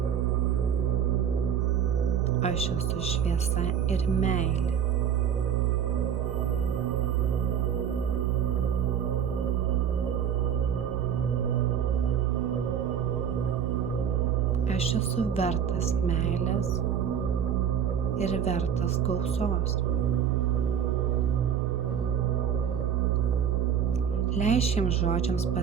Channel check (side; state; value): left; quieter; 8.4 dB